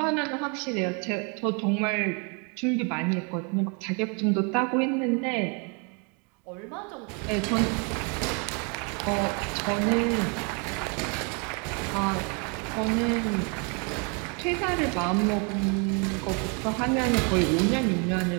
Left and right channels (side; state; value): left; quieter; 35.1 dB